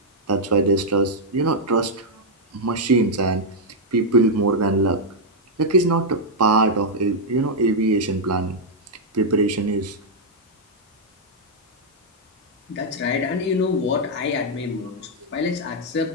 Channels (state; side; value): normal; both; correlation -0.04